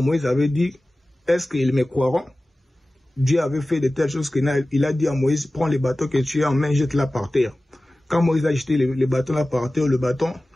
Moïse avait dit, est-ce qu'ils me croiront? Dieu avait fait de telles choses qu'il a dit à Moïse, prends les bâtons que tu as en main, jette-la par terre. Quand Moïse a jeté les bâtons là par terre, le bâton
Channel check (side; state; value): both; normal; correlation 0.97